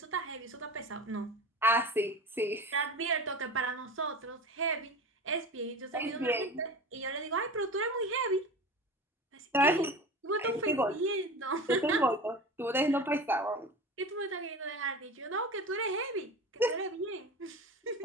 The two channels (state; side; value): normal; both; correlation 0.32